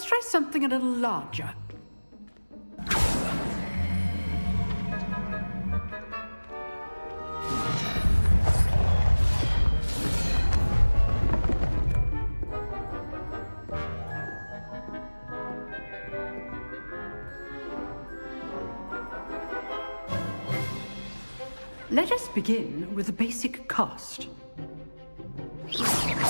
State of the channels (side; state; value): both; inverted; correlation -1.00